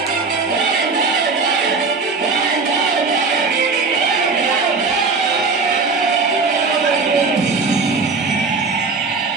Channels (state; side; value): quieter; left; 4.4 dB